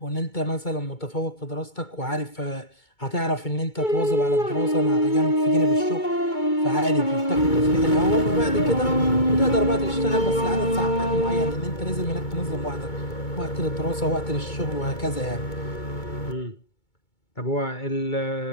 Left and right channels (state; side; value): late; right; 2.2 ms